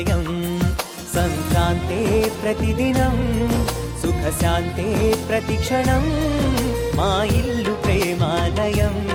సంక్రాంతే ప్రతిదినం, సుఖశాంతే ప్రతిక్షణం, మా ఇల్లు ప్రేమాలయం,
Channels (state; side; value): identical; both; correlation 1.00